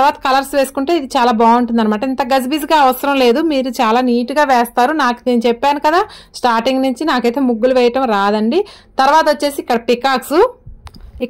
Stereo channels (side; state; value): both; identical; correlation 1.00